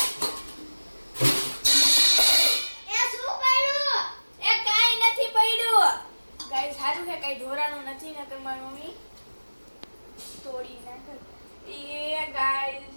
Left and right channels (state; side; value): inverted; both; correlation -1.00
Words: ગાઈસ સારું છે કઈ ઢોરાનું નથી, ને તમારી મમ્મી તોડી નાખે એ